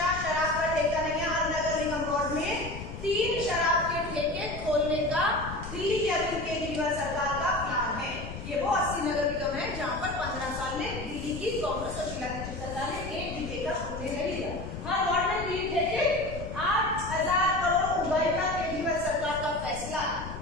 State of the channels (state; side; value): noise; left; rumble, 9 dB below the sound